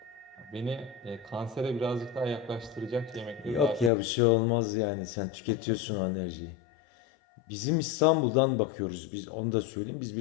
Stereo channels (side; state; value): right; drops out; at 3.9 s